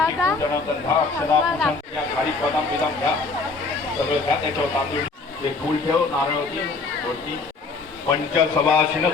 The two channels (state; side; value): quieter; right; 4.0 dB